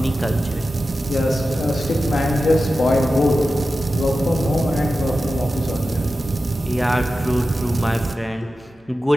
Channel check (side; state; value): both; normal; correlation 0.93